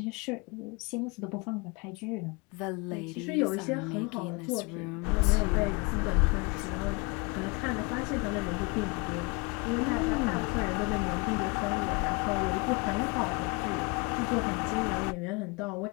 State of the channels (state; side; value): quieter; right; 28.9 dB